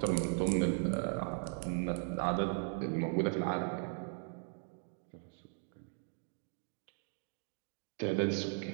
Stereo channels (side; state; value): left; silent; 52 dB below the other